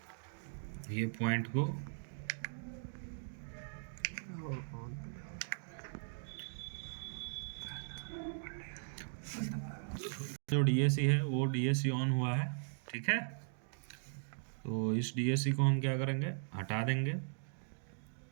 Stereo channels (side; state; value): left; silent; digital silence